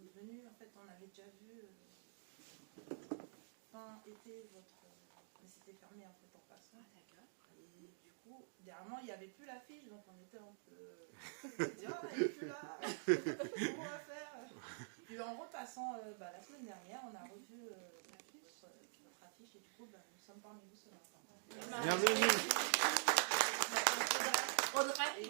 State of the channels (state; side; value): silent; left; digital silence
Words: venus, en fait, on avait déjà vu fin été votre. Mais c'était fermé en fait en passant. Ah, d'accord. Et du coup, dernièrement, il n'y avait plus l'affiche, donc on était un peu. On se dit, ah, elle n'est plus là. Comment on va faire? Puis en repassant la semaine dernière, on a revu votre affiche et du coup, nous sommes parmi vous ce matin. Bienvenue. Audrey Et